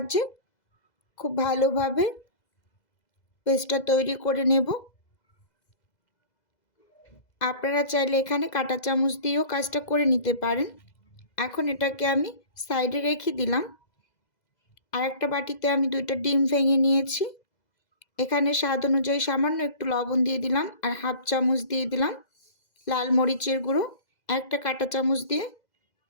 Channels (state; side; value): late; right; 2.0 ms